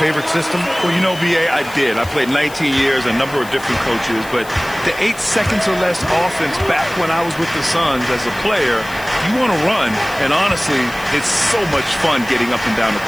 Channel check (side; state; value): left; noise; hiss, 18 dB below the sound